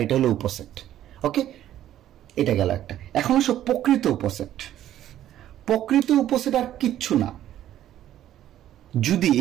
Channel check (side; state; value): left; quieter; 12.2 dB